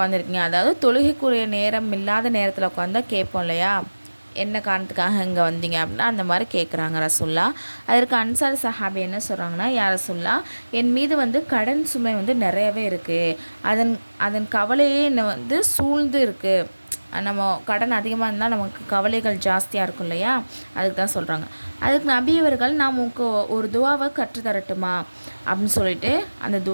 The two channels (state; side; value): inverted; both; correlation -1.00